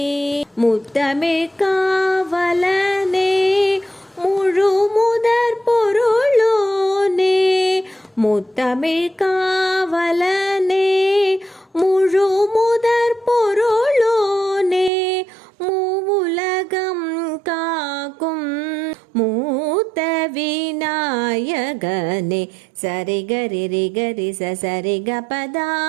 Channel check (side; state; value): left; drops out; at 14.9 s